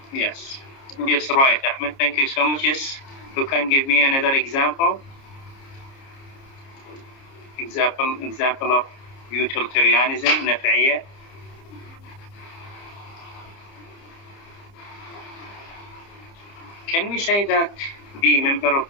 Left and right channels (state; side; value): late; right; 30 ms